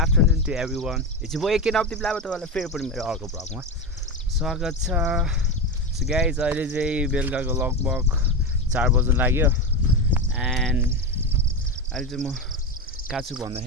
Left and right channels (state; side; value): normal; both; correlation 0.17